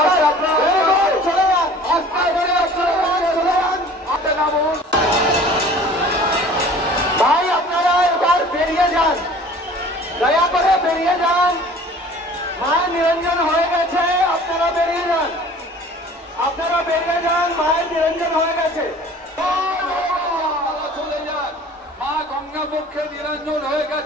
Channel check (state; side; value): normal; both; correlation 0.47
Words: চলে যান, ভাই আপনারা এবার বেরিয়ে যান, দয়া করে বেরিয়ে যান। মায়ের নিরঞ্জন হয়ে গেছে, আপনারা বেরিয়ে যান, আপনারা বেরিয়ে যান, মায়ের নিরঞ্জন হয়ে গেছে। চলে যান, মা গঙ্গা পক্ষে নিরঞ্জন হয়ে